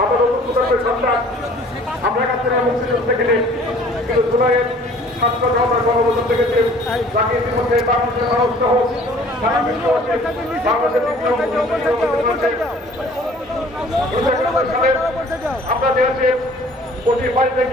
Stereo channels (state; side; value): normal; both; correlation 0.52